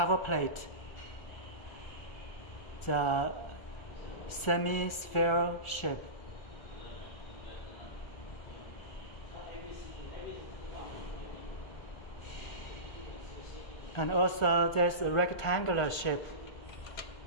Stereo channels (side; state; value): right; late; 1.4 ms